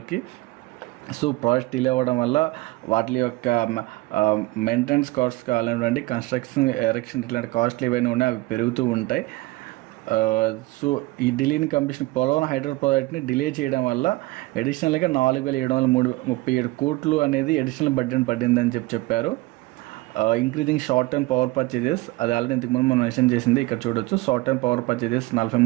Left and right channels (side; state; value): left; quieter; 20.9 dB